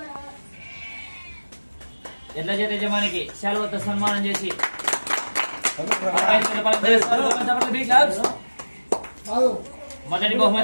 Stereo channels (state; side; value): inverted; both; correlation -1.00